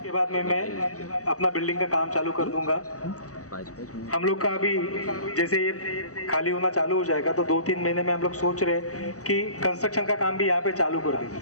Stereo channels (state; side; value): late; right; 0.66 ms